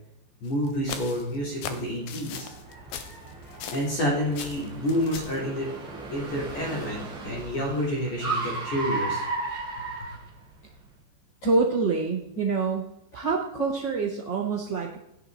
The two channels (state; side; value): late; right; 14 ms